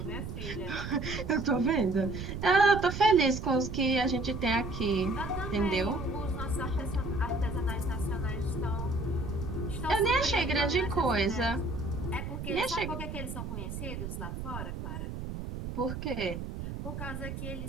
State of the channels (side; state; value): right; noise; rumble, 6 dB below the sound